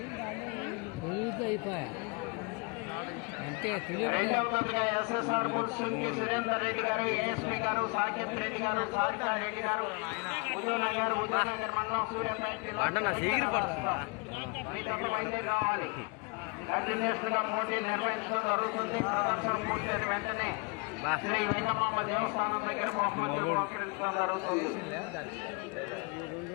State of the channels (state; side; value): quieter; right; 30.8 dB